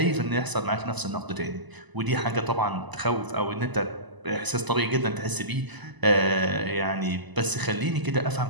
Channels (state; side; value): late; left; 1.0 ms